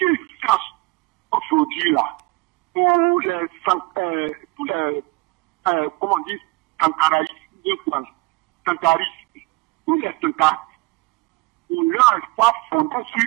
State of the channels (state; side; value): quieter; left; 24.3 dB